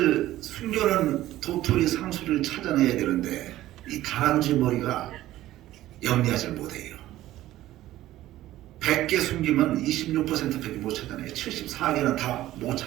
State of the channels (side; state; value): left; quieter; 14.8 dB